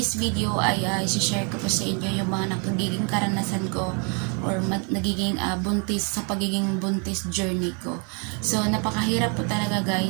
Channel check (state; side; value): quieter; left; 36.6 dB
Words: video ay isi-share ko po sa inyo yung mga nagiging karanasan ko or nagiging buntis sa pagiging buntis journey ko. So napakahirap po talaga